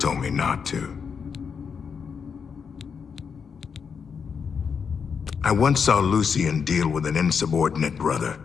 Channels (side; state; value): right; quieter; 6.3 dB